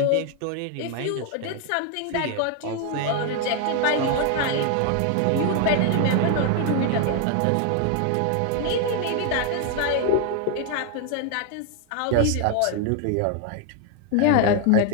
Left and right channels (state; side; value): different; both; correlation 0.01